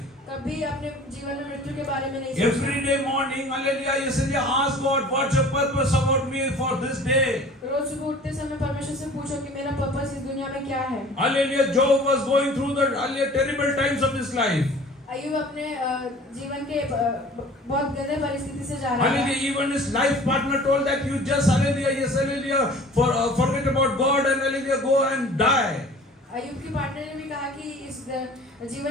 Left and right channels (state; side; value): normal; both; correlation 0.46